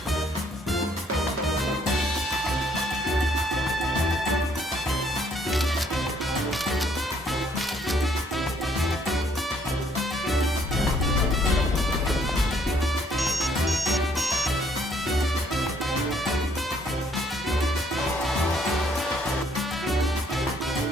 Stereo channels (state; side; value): normal; both; correlation 0.66